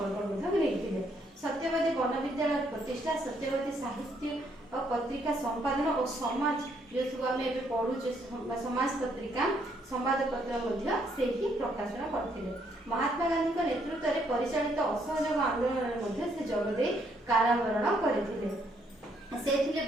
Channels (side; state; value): both; normal; correlation 0.71